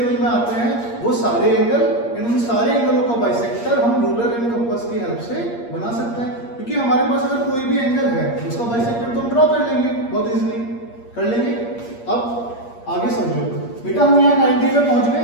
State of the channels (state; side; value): late; right; 8.5 ms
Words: में आते हैं वो सारे एंगल, इन सारे एंगलों का बाइसेक्टर हम रूलर एंड कंपास की हेल्प से बना सकते हैं, क्योंकि हमारे पास अगर कोई भी एंगल है उसका बाइसेक्टर तो हम ड्रॉ कर लेंगे, बहुत इजीली कर लेंगे। अब आगे समझो बेटा, हम यहाँ 90 पे पहुंच गए,